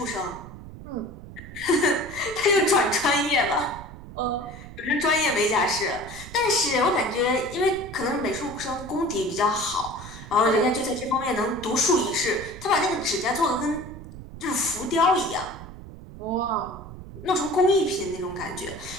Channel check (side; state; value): right; noise; rumble, 14 dB below the sound